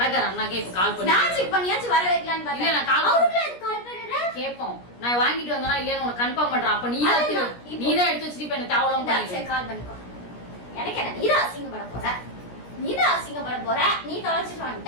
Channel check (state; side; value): late; right; 17 ms